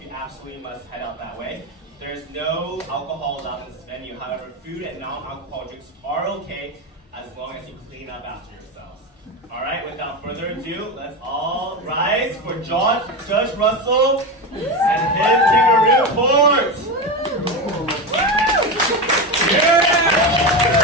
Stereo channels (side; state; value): both; normal; correlation 0.18